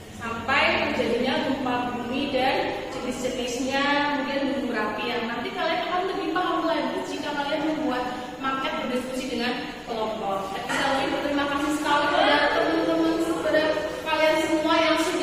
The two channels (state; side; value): identical; both; correlation 1.00